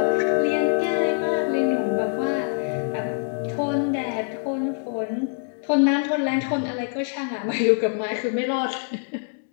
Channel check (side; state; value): right; silent; 57 dB below the other